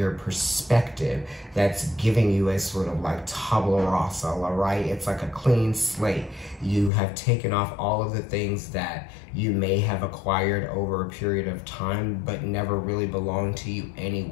perspective that's giving you a sort of like tabula rasa, all right? It's like a clean slate. You have taken off all of the things that you may have acquired over a period of time, but never really belonged to you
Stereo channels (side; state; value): right; drops out; at 6.9 s